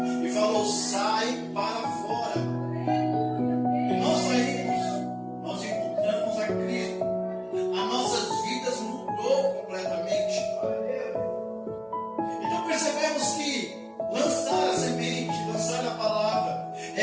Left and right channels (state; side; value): identical; both; correlation 1.00